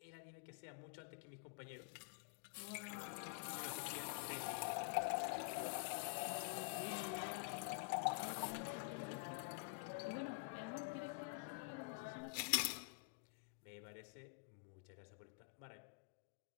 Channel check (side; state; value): right; quieter; 33.4 dB